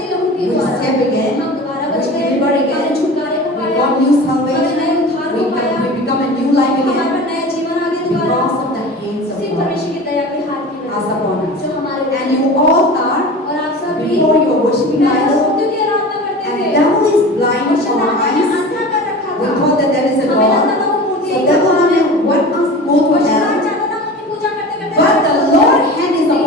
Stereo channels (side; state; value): both; normal; correlation 0.35